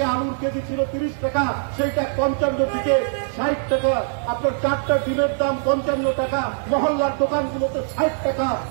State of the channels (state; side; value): silent; left; 55 dB below the other